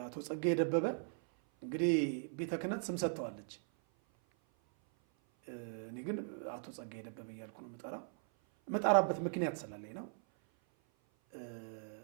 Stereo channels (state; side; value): silent; left; 52 dB below the other